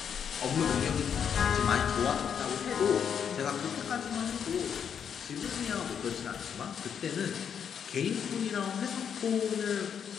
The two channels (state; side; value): quieter; right; 7.8 dB